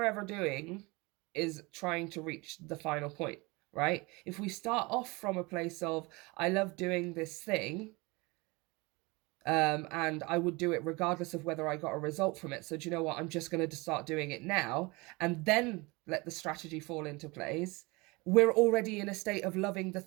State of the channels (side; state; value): left; quieter; 25.4 dB